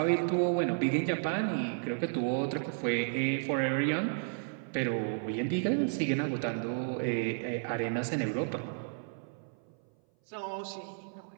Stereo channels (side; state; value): left; silent; 56 dB below the other